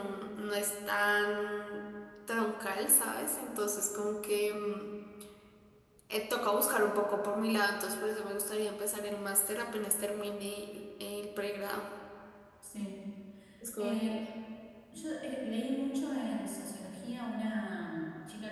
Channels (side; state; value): both; identical; correlation 1.00